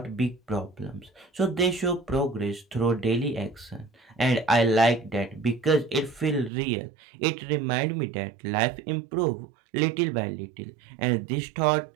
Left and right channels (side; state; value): left; drops out; at 6.5 s